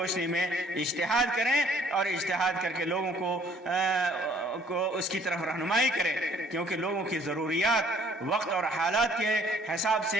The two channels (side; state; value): both; normal; correlation 0.60